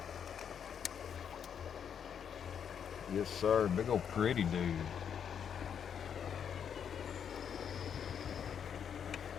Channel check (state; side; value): quieter; right; 7.9 dB